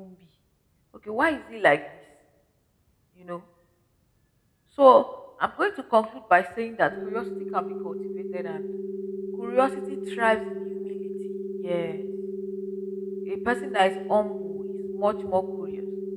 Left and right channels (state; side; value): identical; both; correlation 1.00